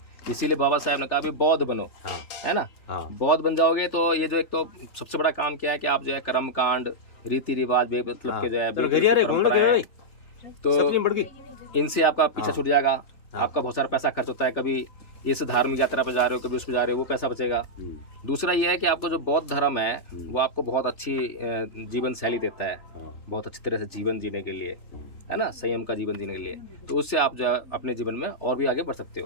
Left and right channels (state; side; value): late; right; 3.4 ms